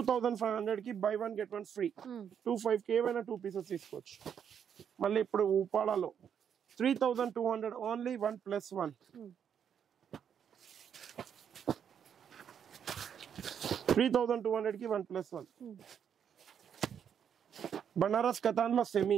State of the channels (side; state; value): left; quieter; 8.2 dB